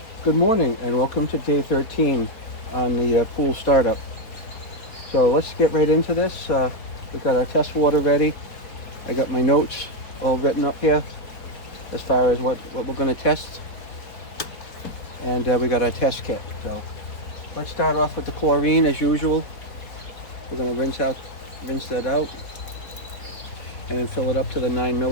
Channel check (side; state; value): right; late; 4.2 ms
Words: Good morning and welcome to day 13 on the pool startup. So let's get right into this. We got our test water ready. I got my notes all written up here as far as what we're going to test. And we got our test kit. So let's start off with the chlorine as usual. We're going to rinse that out and then fill it up to the 9